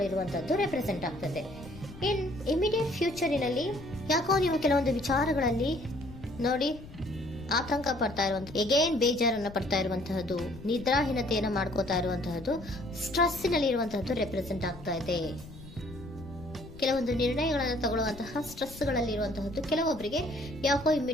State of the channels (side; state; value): left; noise; rumble, 16 dB below the sound